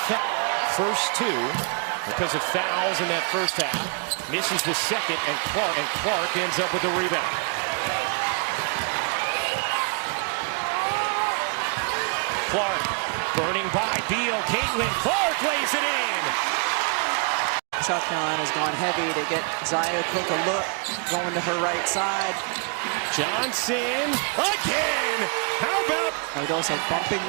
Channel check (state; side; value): quieter; left; 36.6 dB